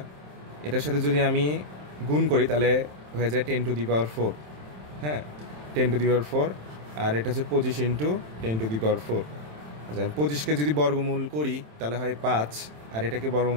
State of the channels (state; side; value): late; left; 27 ms